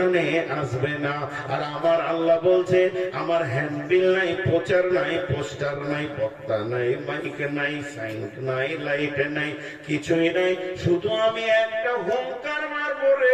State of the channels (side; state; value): both; identical; correlation 1.00